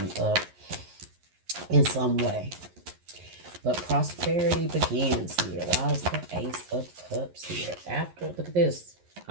up in some way. But prosperity begins here. Why is the Ace of Cups here? Look at this.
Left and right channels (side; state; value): left; late; 11 ms